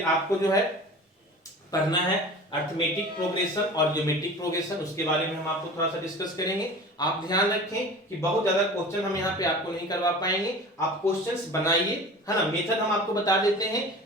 आपको जो है पढ़ना है अरिथमेटिक प्रोग्रेशन और ज्योमेट्रिक प्रोग्रेशन, उसके बारे में हम आपको थोड़ा सा डिस्कस करेंगे। आप ध्यान रखें कि बहुत ज्यादा क्वेश्चन हम यहाँ पे आपको नहीं करवा पाएंगे, आप क्वेश्चंस बनाइए, है ना, मेथड हम आपको बता देते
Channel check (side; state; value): both; normal; correlation 0.38